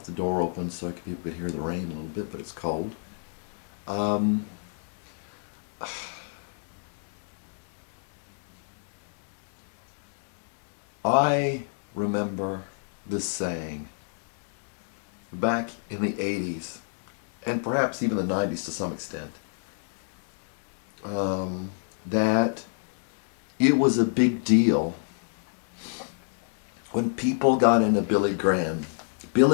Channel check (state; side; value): silent; right; digital silence